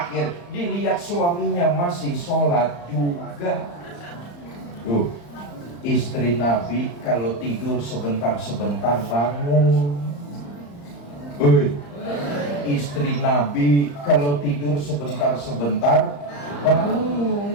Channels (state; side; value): late; right; 35 ms